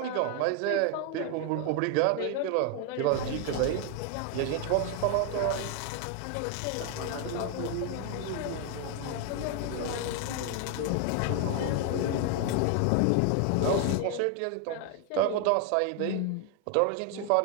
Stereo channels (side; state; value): both; different; correlation 0.01